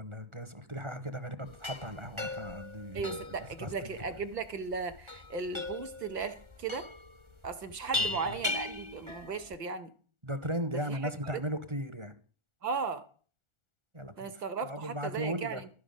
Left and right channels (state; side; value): late; left; 1.4 ms